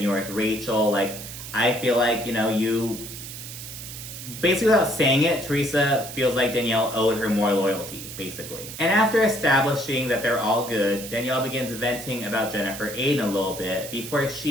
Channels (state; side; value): noise; right; hiss, 11 dB below the sound